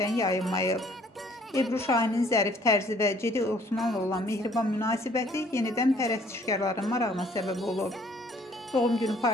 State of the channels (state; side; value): normal; both; correlation 0.59